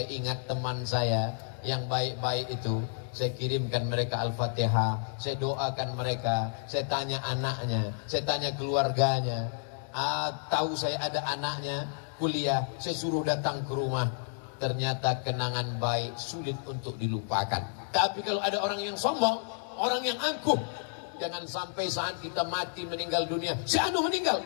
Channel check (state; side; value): silent; right; digital silence